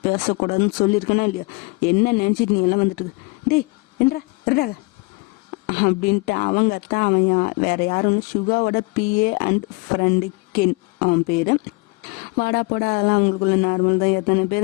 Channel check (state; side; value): quieter; right; 27.7 dB